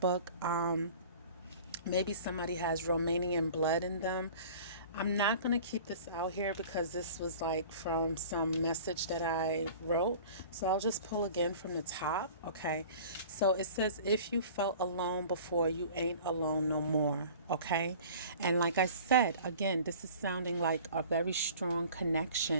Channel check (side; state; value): both; inverted; correlation -0.44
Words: Maybe somebody has Romanian blood in them. I'm not going to keep this out here because this was like from some message that I wrote. So I'll just pull again from the top. Okay. So it says, if you felt alone before, you ain't alone no more. Okay. And like I said, again, this is sounding like a very strong